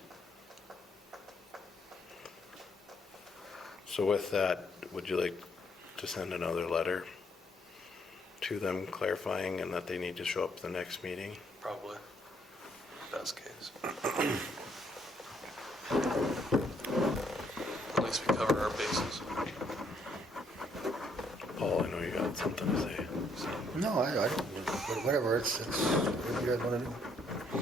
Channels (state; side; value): normal; both; correlation 0.70